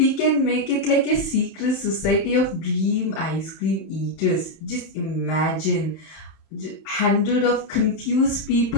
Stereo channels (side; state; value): right; late; 31 ms